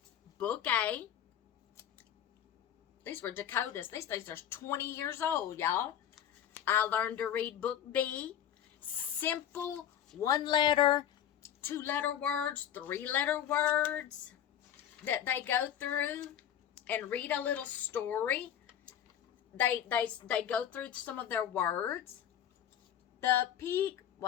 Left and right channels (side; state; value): right; quieter; 10.1 dB